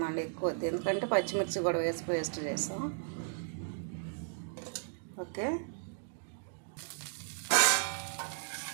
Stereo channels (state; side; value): silent; left; digital silence